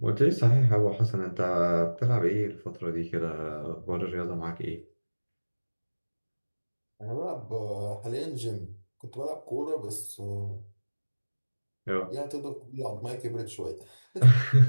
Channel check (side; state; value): both; inverted; correlation -1.00